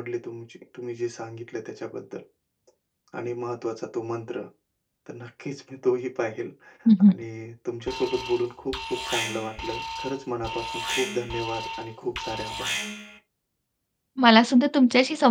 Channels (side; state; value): both; identical; correlation 1.00